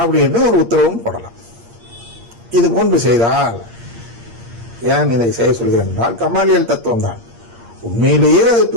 அப்படின்னு ஒரு உத்தரவும் போடலாம். இது போன்று செய்தால், ஏன் இதை செய்ய சொல்கிறேன் என்றால், கமாலியல் தத்துவம் தான். உண்மையிலேயே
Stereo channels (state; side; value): late; left; 8.6 ms